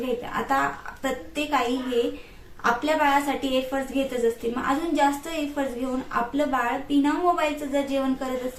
आता प्रत्येक आई हे आपल्या बाळासाठी एफर्ट्स घेतच असते, मग अजून जास्त एफर्ट्स घेऊन आपलं बाळ बिना मोबाईलचं जर जेवण करत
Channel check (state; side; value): identical; both; correlation 1.00